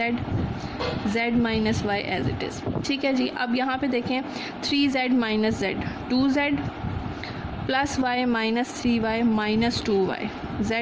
z minus y as it is. ठीक है जी, अब यहाँ पे देखें 3z minus z, 2z plus y minus 3y minus 2y,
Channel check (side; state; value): both; identical; correlation 1.00